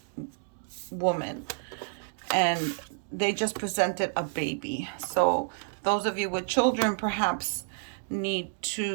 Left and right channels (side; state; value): left; silent; 55 dB below the other